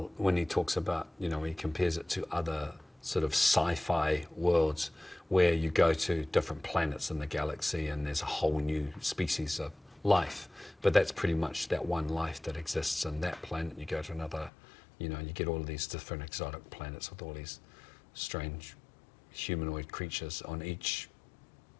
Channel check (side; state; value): right; drops out; at 14.5 s